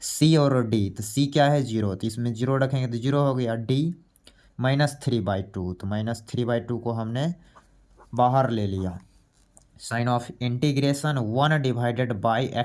c और d, तो c क्या है 0, तो इसमें 0 रखेंगे तो 0 हो गया, d -3/2, तो -3/2 को हमने बाहर ले लिया, sign of integration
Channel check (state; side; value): identical; both; correlation 1.00